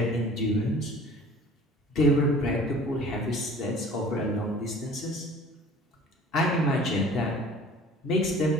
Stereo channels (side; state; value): both; normal; correlation 0.47